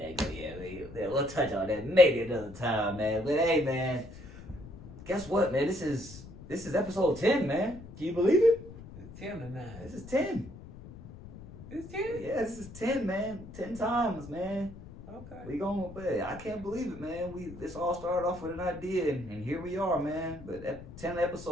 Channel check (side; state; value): left; noise; rumble, 15 dB below the sound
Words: go. Yeah, we'll touch on that maybe another time, man. But hey, man, guess what, man? This is episode 10, man. Can you believe it? It's 10 to 9. This is 10. It's 10? Yeah, this is 10, man. 10 times, man. Okay. I can't believe it, man. This all started off with an idea, and here we are, man. But 10